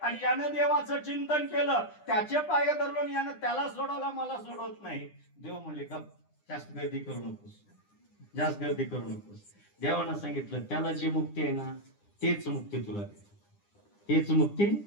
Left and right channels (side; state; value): right; late; 9.9 ms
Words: आणि यानं देवाचं चिंतन केलं, त्याचे पाय धरलो आणि यानं त्याला सोडवला, मला सोडवत नाही. देव म्हणले गप, जास्त गर्दी करू नकोस, जास्त गर्दी करू नकोस. देवानं सांगितलं त्याला जी मुक्ती आहे ना, तेच मुक्ती तुला देतो, तेच मुक्ती